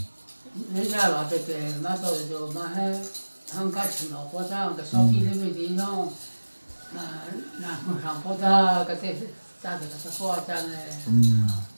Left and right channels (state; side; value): inverted; both; correlation -1.00